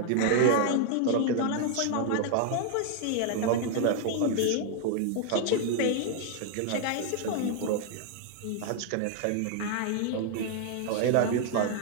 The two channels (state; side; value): different; both; correlation 0.00